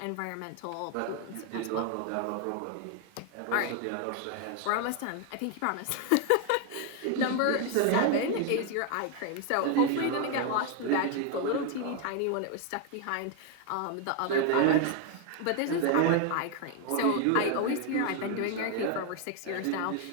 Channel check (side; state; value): both; different; correlation 0.01